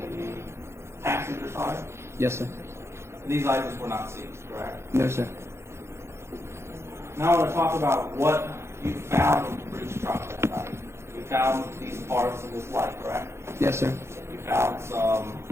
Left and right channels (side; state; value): left; late; 0.13 ms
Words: the passenger side. Yes, sir. These items were not seized, correct? No, sir. Now I want to talk about what you found in the breach truck that night. You found these parts in this light, correct? Yes, sir. You found some